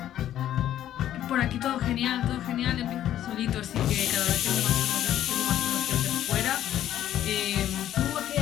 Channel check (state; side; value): quieter; right; 11.8 dB